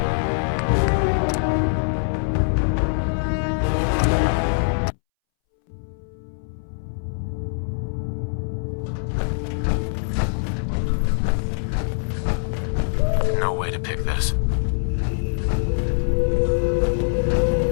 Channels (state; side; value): silent; right; 63 dB below the other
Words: No way to pick this.